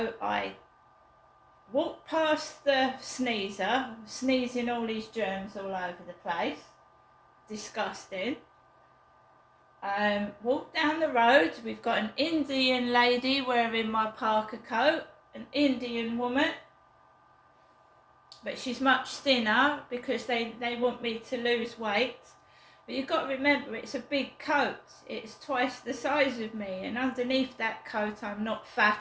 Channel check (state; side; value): identical; both; correlation 1.00